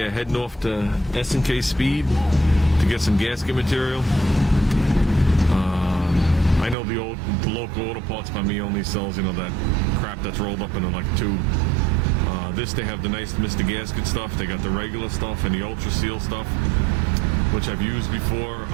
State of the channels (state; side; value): drops out; left; at 6.8 s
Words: heading off to S&K Speed to get some gasket material. I know the local auto parts by me only sells, you know, that crap that's rolled up into like a tube. This, they have the nice Mr. Gasket stuff. They got the regular stuff and the Ultra Seal stuff, which I've used before.